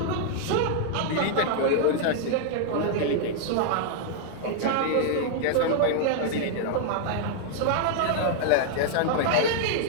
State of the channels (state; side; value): different; both; correlation 0.00